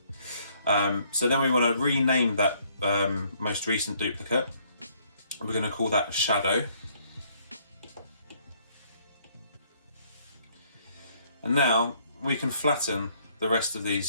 So then we want to rename that most recent duplicate. We're going to call that shadow. And now we can flatten the rest of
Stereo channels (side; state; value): both; inverted; correlation -0.66